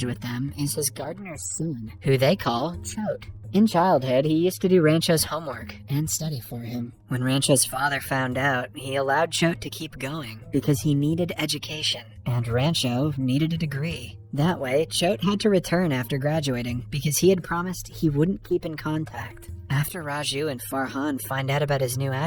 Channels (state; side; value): identical; both; correlation 1.00